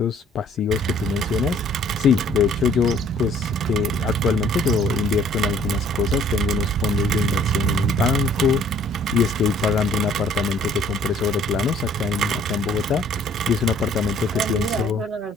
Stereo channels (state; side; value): normal; both; correlation 0.58